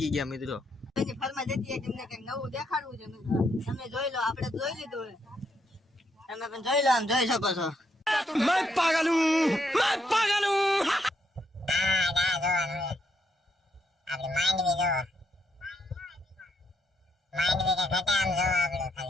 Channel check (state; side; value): normal; both; correlation 0.76